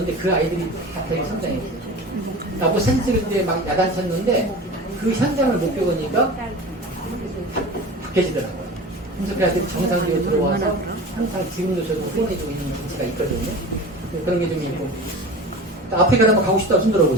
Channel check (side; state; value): both; normal; correlation 0.34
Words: 그 아이들이 다 되게 성장했어요. 나보고 사진 찍을 때 막 야단쳤는데 그 현장을 못 겪으니까 바뀌어지더라고요. 그래서 그 아이들이 정상적으로 들어와서 항상 지금도 저도 후원해주고 있는 위치가 있거든요. 그런 게 좀 있고. 아프리카 한번 가고 싶다고 손